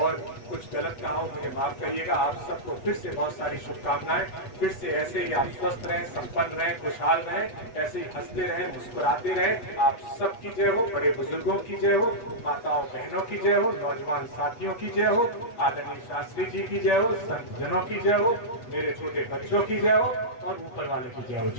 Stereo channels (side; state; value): right; late; 8.2 ms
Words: कुछ गलत कहा हो मुझे माफ करिएगा। आप सबको फिर से बहुत सारी शुभकामनाएं। फिर से ऐसे ही आप स्वस्थ रहें, संपन्न रहें, खुशहाल रहें, ऐसे ही हंसते रहें, मुस्कुराते रहें। आप सबकी जय हो, बड़े बुजुर्गों की जय हो, माताओं बहनों की जय हो, नौजवान साथियों की जय हो, आदरणीय शास्त्री जी की जय हो, संत जनों की जय हो, मेरे छोटे बच्चों की जय हो, और ऊपर वाले की जय हो।